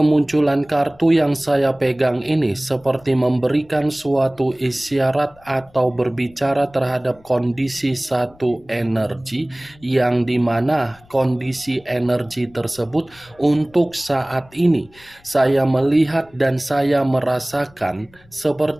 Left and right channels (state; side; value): noise; left; rumble, 27 dB below the sound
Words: kartu yang saya pegang ini seperti memberikan suatu isyarat atau berbicara terhadap kondisi satu energi, yang dimana kondisi energi tersebut untuk saat ini saya melihat dan saya merasakan